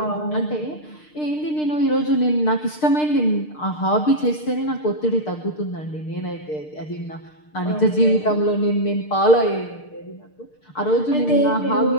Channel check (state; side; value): late; right; 6.6 ms